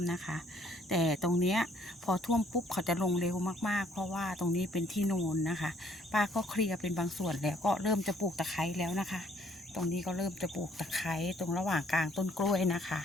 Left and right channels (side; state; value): both; normal; correlation 0.63